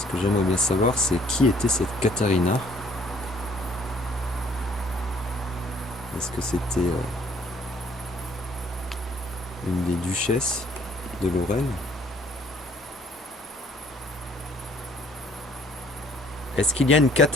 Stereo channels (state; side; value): normal; both; correlation 0.60